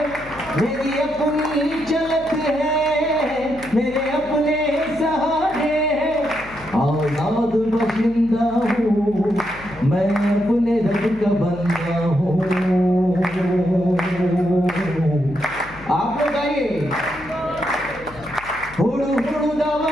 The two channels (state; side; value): noise; left; hum, 19 dB below the sound